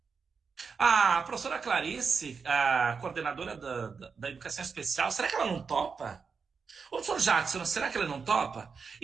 A professora Clarice, a coordenadora da educação especial, será que ela não topa? O professor Jackson, será que ele não topa?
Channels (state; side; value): quieter; left; 5.5 dB